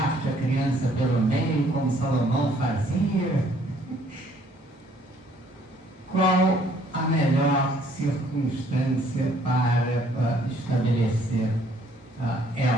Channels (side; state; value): both; normal; correlation 0.62